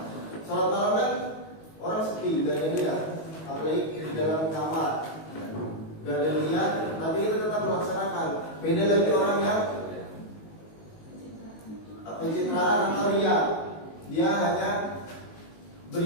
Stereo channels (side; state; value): right; late; 19 ms